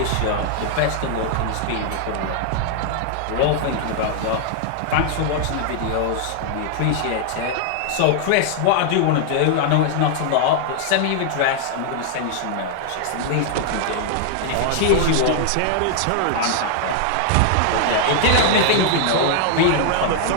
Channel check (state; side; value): different; both; correlation 0.00